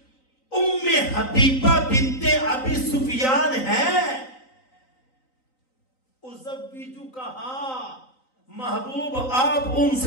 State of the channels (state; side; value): late; right; 3.9 ms